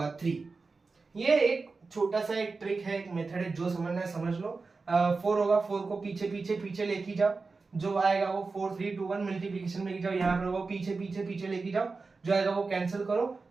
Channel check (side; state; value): left; quieter; 4.1 dB